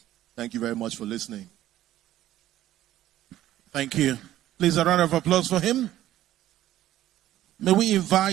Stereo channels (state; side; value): quieter; left; 13.6 dB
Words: Thank you very much for listening. Thank you. Please, a round of applause for him. May we